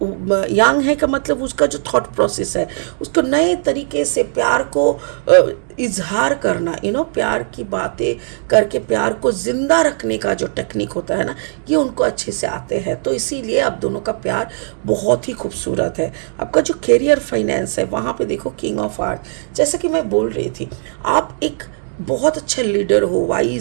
यंग है का मतलब उसका जो थॉट प्रोसेस है, उसको नए तरीके से प्यार को इजहार करना, प्यार की बातें करके प्यार को जिंदा रखने का जो टेक्निक होता है ना, ये उनको अच्छे से आते हैं। तो इसीलिए आप दोनों का प्यार बहुत ही खूबसूरत है। आपका जो करियर फाइनेंस है वहाँ पे देखो किंग ऑफ आर्ट, जैसा कि मैं बोल रही थी, आप एक बहुत अच्छा लीडर हो,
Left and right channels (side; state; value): left; silent; digital silence